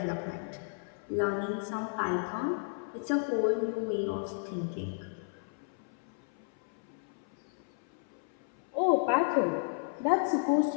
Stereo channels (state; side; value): silent; right; 56 dB below the other